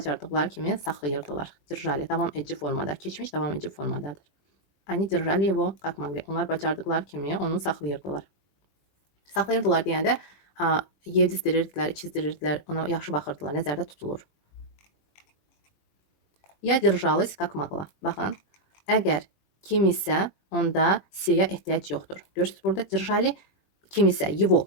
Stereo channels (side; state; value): right; late; 20 ms